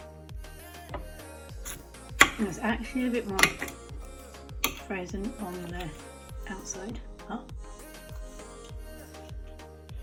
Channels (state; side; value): identical; both; correlation 1.00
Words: There's actually a bit more frozen on the outside. Oh.